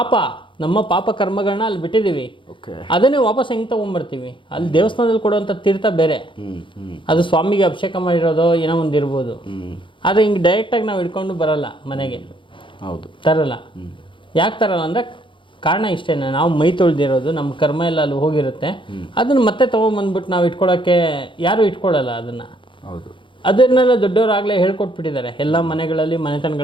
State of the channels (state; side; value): late; right; 0.24 ms